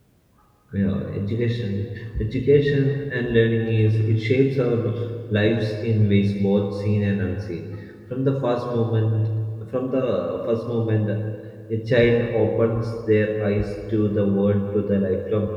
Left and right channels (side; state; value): both; identical; correlation 1.00